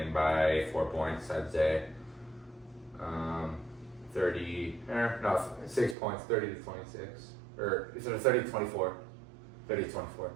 by 4 points, I'd say. 6 points, 30-26. Or is it 30-24? 30-24.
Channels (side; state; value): left; drops out; at 6.0 s